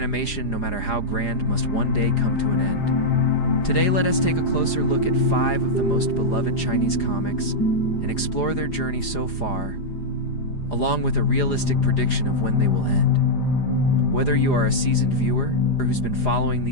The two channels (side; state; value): right; late; 4.9 ms